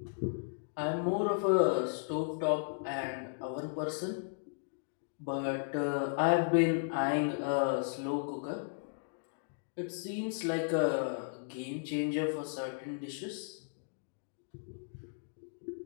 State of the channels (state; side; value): silent; right; digital silence